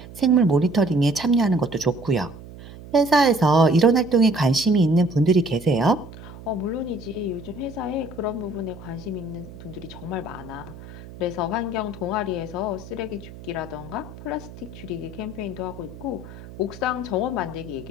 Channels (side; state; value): right; noise; hum, 16 dB below the sound